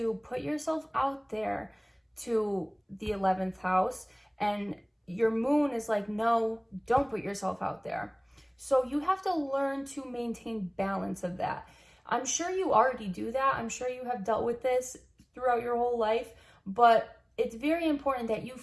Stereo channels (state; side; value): identical; both; correlation 1.00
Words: put yourself out there to the 11th house, and your moon is like, no, don't put yourself out there. So you have to learn to maintain balance of that. I'm sure you already do that. I'm sure you have dealt with this throughout your whole life, but it's very important that you